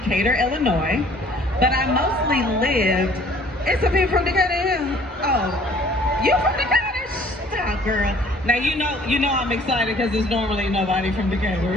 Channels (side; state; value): both; normal; correlation 0.55